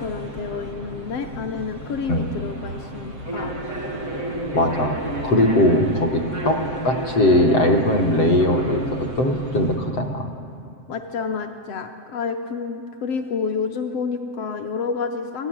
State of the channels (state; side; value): late; right; 7.7 ms